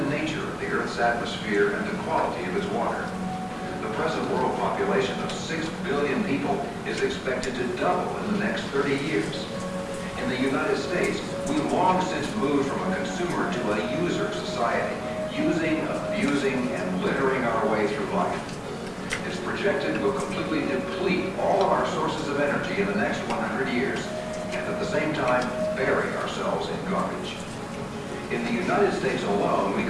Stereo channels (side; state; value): both; identical; correlation 1.00